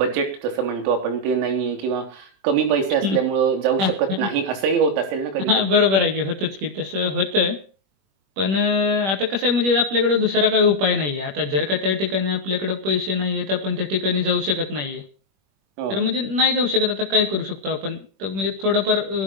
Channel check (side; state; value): left; late; 21 ms